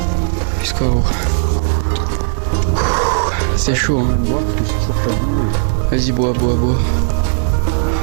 Jusqu'à haut. C'est chaud. Hein. Vas-y, bois, bois, bois.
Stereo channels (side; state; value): left; silent; 65 dB below the other